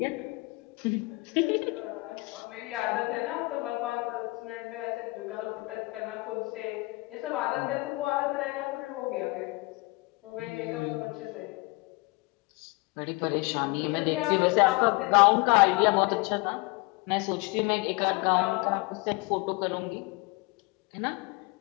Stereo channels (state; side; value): quieter; right; 24.8 dB